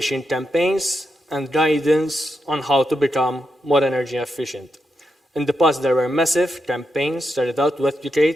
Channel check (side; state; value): both; normal; correlation 0.85